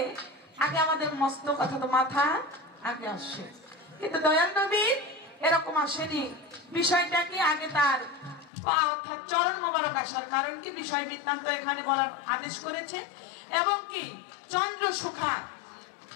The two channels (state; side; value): drops out; right; at 8.5 s